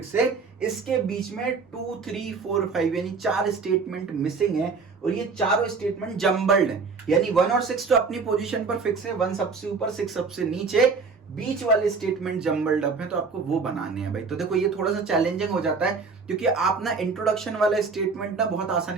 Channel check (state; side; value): quieter; left; 4.7 dB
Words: है। इसके बीच में 2, 3, 4, 5 यानी 4 स्टेटमेंट मिसिंग है, और ये चारों स्टेटमेंट जम्बल्ड है। यानी 1 और 6 तो अपनी पोजीशन पर फिक्स है, 1 सबसे ऊपर 6 सबसे नीचे, बीच वाले स्टेटमेंट जम्बल्ड अप है, तो आपको वो बनाने हैं भाई। तो देखो ये थोड़ा सा चैलेंजिंग हो जाता है, क्योंकि आप ना इंट्रोडक्शन वाला स्टेटमेंट ना बहुत